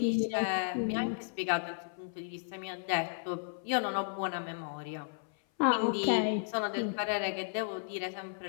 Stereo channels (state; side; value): silent; right; 55 dB below the other